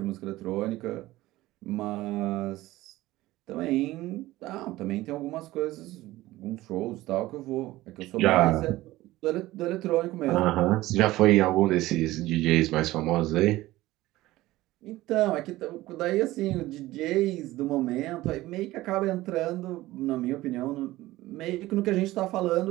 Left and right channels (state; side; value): quieter; left; 17.3 dB